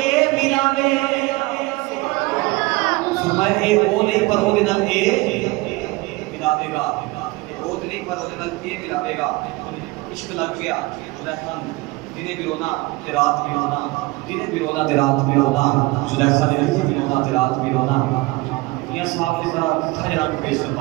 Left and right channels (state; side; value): quieter; left; 22.5 dB